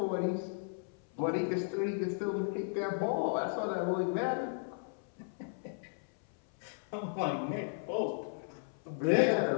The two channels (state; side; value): silent; right; 54 dB below the other